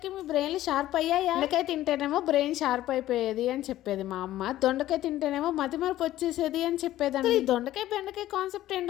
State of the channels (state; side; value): quieter; right; 14.2 dB